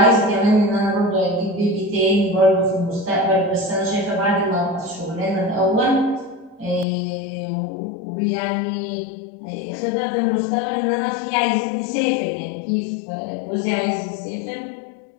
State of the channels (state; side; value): drops out; right; at 6.9 s